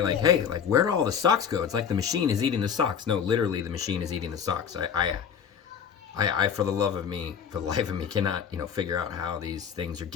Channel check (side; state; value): right; quieter; 7.5 dB